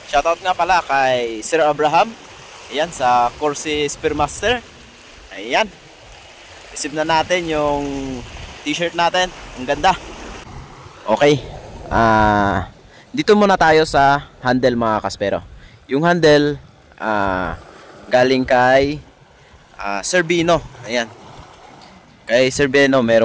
shoutout nga pala kay Sir Abraham. Ayan, sa Corsi Spearmaster. Ayan. Receive na natin yung t-shirt natin. Ang ganda. Okay. Dito muna tayo sa handle mga kaspero. Yung handle, galing kay Sir Bino. Ayan. Kay Sir Beno,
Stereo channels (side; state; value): both; identical; correlation 1.00